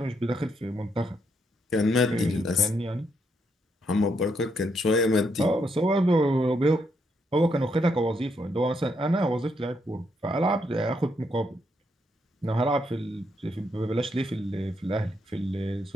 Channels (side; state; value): both; normal; correlation 0.77